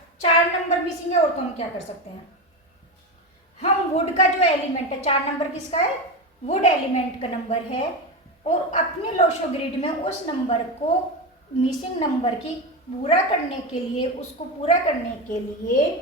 4 नंबर मिसिंग है और तो हम क्या कर सकते हैं, हम वुड का जो एलिमेंट है, 4 नंबर किसका है, वुड एलिमेंट का नंबर है, और अपने लोशो ग्रिड में उस नंबर को, मिसिंग नंबर की पूरा करने के लिए, उसको पूरा करने के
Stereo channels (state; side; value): normal; both; correlation 0.18